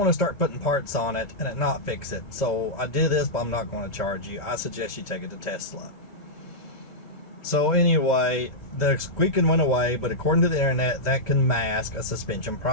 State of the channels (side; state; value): right; late; 2.0 ms